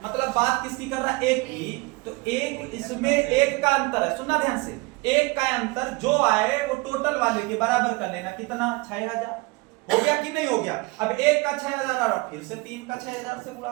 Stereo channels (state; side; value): quieter; left; 25.2 dB